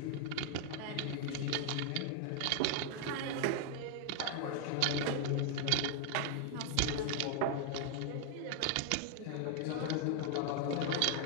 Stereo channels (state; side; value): different; both; correlation 0.00